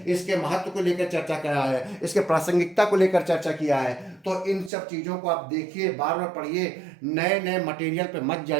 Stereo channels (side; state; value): left; drops out; at 4.7 s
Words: इसके महत्व को लेकर चर्चा किया है, इसके प्रासंगिकता को लेकर चर्चा किया है। तो इन सब चीज़ों को आप देखिए, बार बार पढ़िए, नए नए मटेरियल पे मत